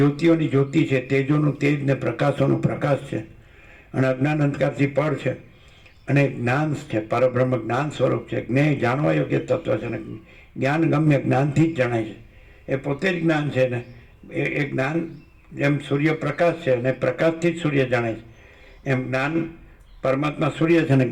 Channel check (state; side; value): identical; both; correlation 1.00